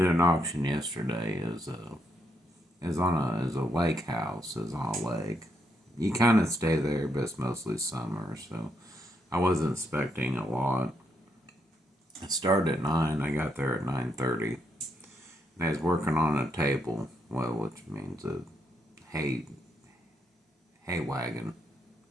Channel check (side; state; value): both; normal; correlation 0.78